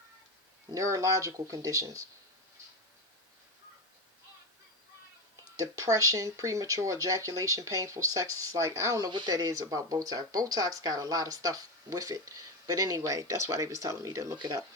Neurological conditions. Depression, premature ejaculation, painful sex. It's like, I don't know what that is about Botox. Botox got a lot of stuff with it. But anyway, that's why they was telling me to look it up.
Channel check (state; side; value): normal; both; correlation 0.16